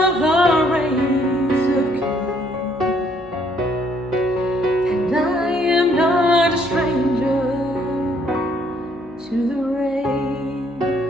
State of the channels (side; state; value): both; normal; correlation 0.66